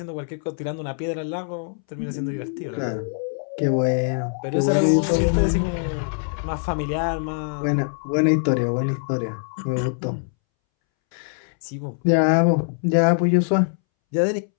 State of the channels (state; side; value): silent; right; 63 dB below the other